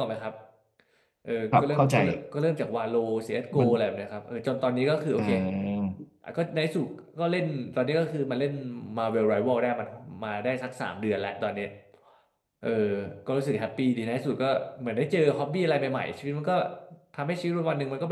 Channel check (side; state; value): both; identical; correlation 1.00